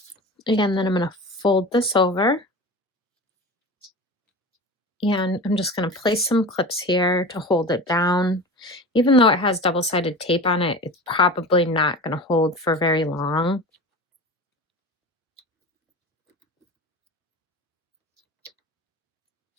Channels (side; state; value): both; normal; correlation 0.32